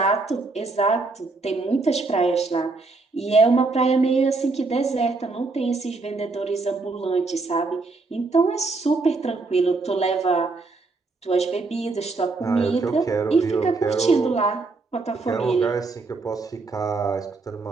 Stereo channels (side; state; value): left; quieter; 3.7 dB